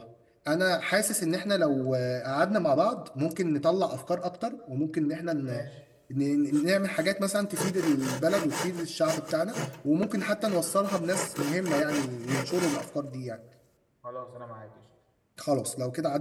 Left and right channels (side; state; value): both; identical; correlation 1.00